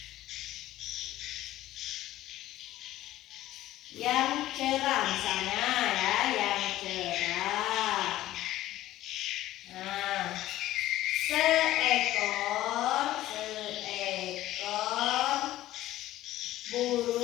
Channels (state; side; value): quieter; right; 14.9 dB